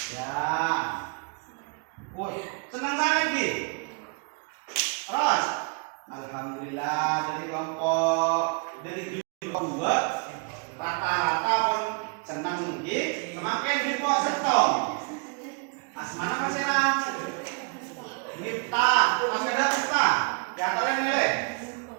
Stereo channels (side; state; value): left; quieter; 37.5 dB